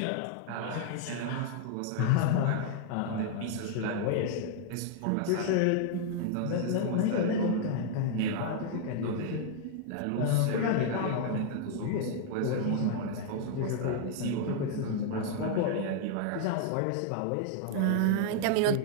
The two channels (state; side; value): different; both; correlation 0.00